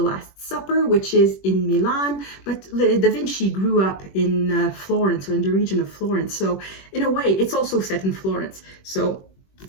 Last Supper, which is in Milan, but da Vinci grew up in Florence, or in the region of Florence. So in a way, it's also set in Florence. So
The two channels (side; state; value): right; late; 21 ms